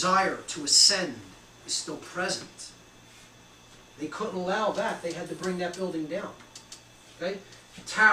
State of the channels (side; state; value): both; identical; correlation 1.00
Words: to ascend is still present. They couldn't allow that. They had to bring that building down. Okay?